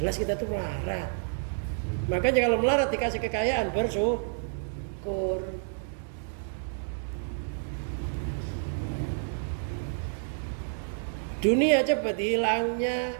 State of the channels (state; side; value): silent; left; digital silence